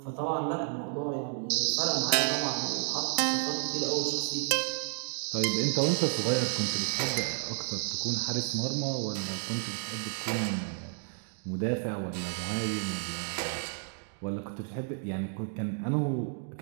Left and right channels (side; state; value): left; silent; 57 dB below the other